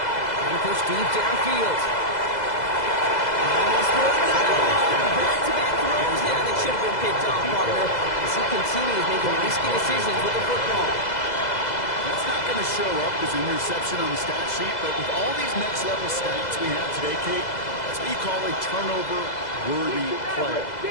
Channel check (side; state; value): right; late; 2.0 ms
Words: push deep downfield. Almost more back-to-back throws now that should have been picked off, partner, as he continues making risky decisions with the football. That's not going to show up as an interception on the stat sheet, but with all these next-level stats we have today, Kate, that's what you call a turnover-worthy play.